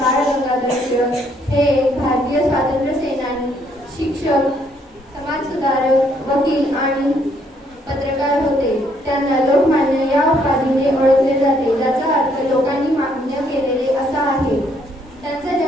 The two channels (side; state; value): both; normal; correlation 0.69